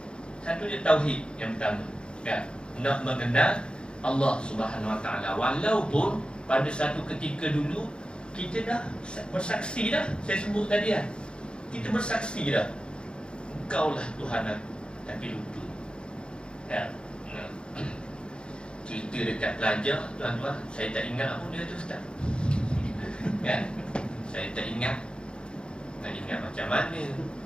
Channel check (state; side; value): late; right; 0.053 ms